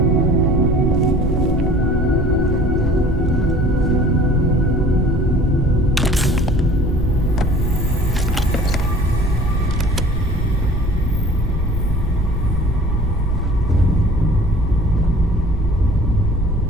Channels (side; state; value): both; normal; correlation 0.47